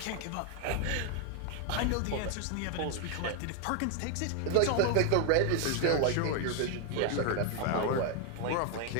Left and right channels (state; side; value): different; both; correlation 0.00